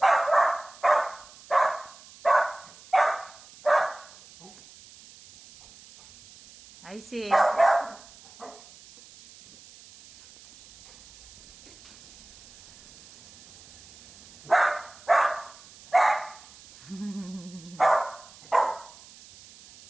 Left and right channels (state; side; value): noise; right; hiss, 23 dB below the sound